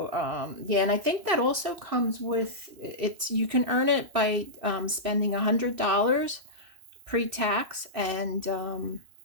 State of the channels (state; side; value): late; left; 3.0 ms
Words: yeah, and I think that also comes with you can earn it by spending $100 pre-tax, and